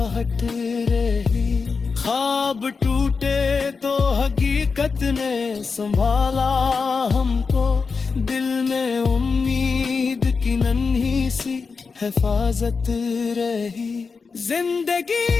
रही। ख्वाब टूटे तो हकीकत ने संभाला हमको, दिल में उम्मीद की नन्ही सी हिफाजत रही। जिंदगी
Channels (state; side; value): quieter; right; 4.9 dB